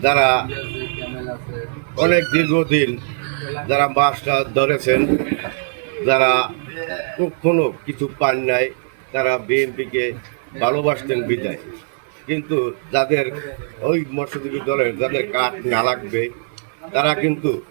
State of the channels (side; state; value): left; silent; 59 dB below the other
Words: যারা অনেক দীর্ঘদিন যারা মাছটা ধরেছেন, যারা কখনো কিছু পান নাই, তারা বিএনপিকে ভালোবাসতেন বিদায়, কিন্তু যাদের ওই মৎস্যজীবী দলের যাদের কাঠ না লাগবে তারা কিন্তু